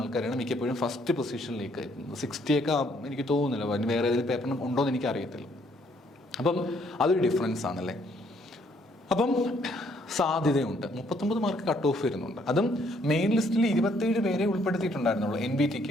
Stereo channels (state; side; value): normal; both; correlation 0.67